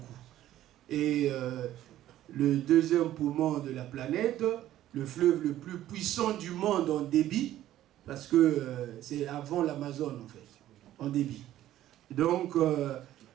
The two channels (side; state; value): left; quieter; 13.2 dB